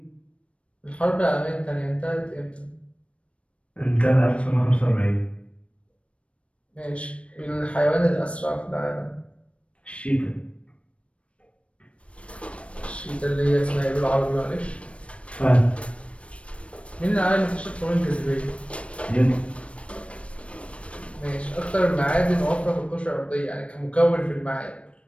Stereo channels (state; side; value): late; right; 0.062 ms